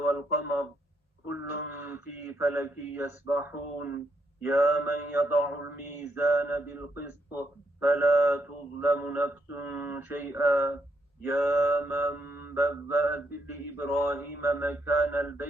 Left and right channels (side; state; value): both; normal; correlation 0.77